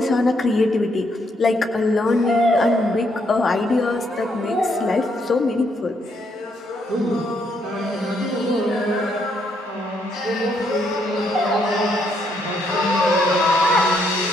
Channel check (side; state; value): both; normal; correlation 0.74